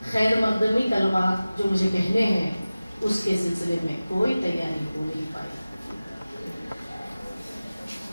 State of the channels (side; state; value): both; inverted; correlation -0.97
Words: خیر مقدمی کلمات جو مجھے کہنے ہیں اس کے سلسلے میں کوئی تیاری ہو نہیں پائی.